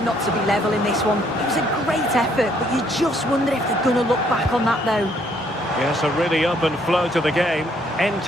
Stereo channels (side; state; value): both; normal; correlation 0.67